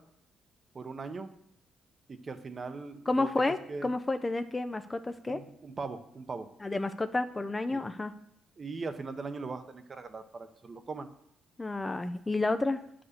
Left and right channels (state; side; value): normal; both; correlation 0.94